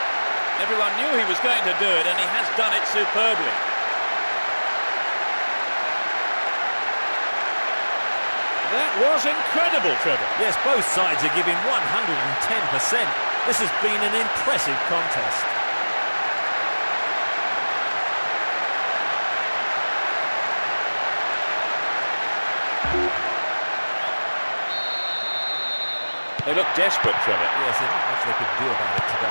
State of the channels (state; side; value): inverted; both; correlation -1.00